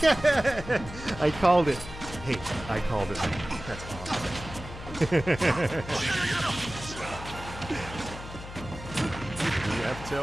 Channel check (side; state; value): left; noise; hum, 12 dB below the sound